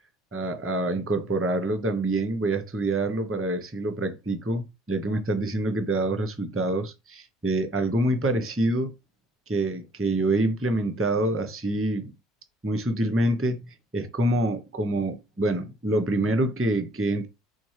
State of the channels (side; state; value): both; normal; correlation 0.61